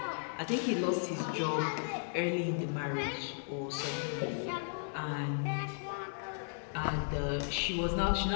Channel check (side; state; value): right; silent; 54 dB below the other